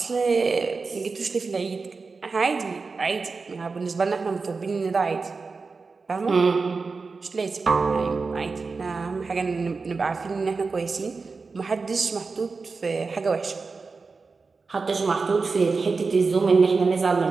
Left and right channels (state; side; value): quieter; left; 4.4 dB